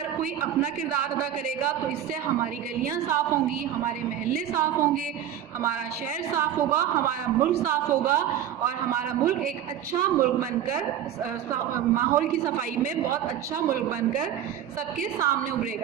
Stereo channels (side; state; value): left; quieter; 10.4 dB